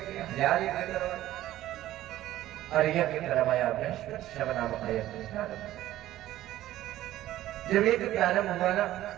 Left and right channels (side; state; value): left; quieter; 14.2 dB